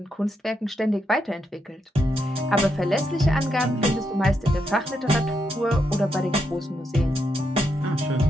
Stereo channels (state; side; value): normal; both; correlation 0.81